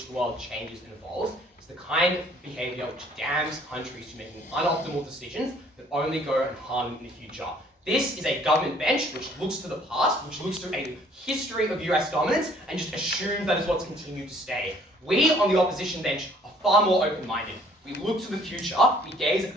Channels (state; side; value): normal; both; correlation 0.59